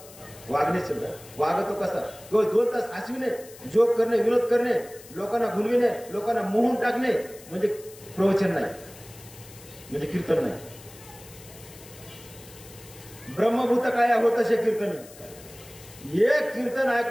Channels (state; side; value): noise; left; hiss, 19 dB below the sound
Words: वागतो कसा, केवळ 2 तास हसविणे, जोक करणे, विनोद करणे, लोकांना घुलविणे, लोकांना मोहून टाकणे म्हणजे प्रवचन नाही, म्हणजे कीर्तन नाही. ब्रह्मभूत काय होत असे कीर्तनी. एक कीर्तन